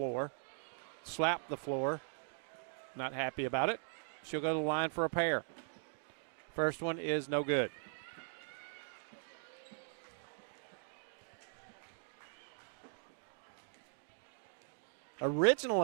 slapped the floor, not happy about it. She'll go to the line for a pair. First one is no good.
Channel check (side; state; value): left; silent; digital silence